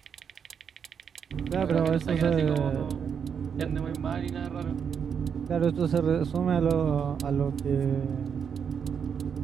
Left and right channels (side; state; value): left; quieter; 7.1 dB